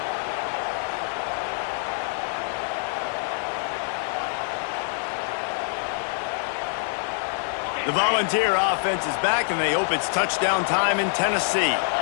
The Volunteer offense is back, and they hope it's touchdown time in Tennessee.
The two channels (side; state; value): right; silent; 61 dB below the other